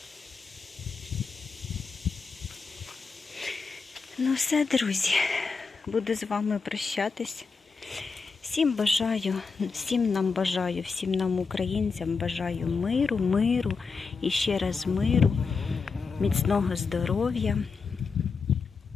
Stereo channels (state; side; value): quieter; right; 4.8 dB